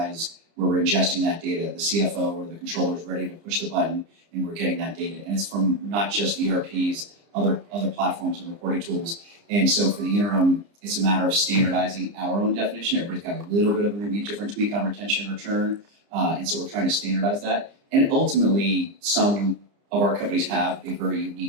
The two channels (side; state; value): left; late; 30 ms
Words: where we're ingesting that data. The CFO or the controller is ready to push the button and we're getting that data. And it's from not just ERPs, other platforms and reporting tools. And so for the interim, it's a matter of standardizing our own definition. Everybody's got a little bit of maybe a different tweak on retention and return. And so we're trying to standardize that. And ultimately, some of our companies have a very